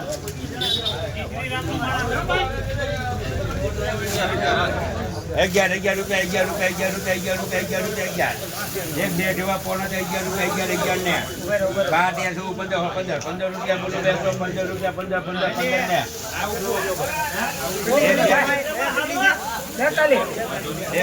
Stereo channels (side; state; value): both; identical; correlation 1.00